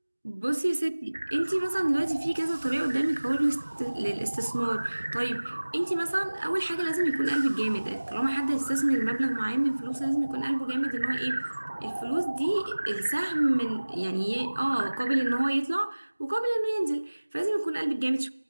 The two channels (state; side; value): inverted; both; correlation -1.00